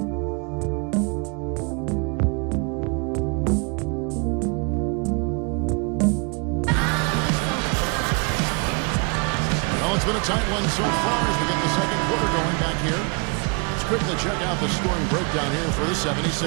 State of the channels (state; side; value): quieter; left; 32.9 dB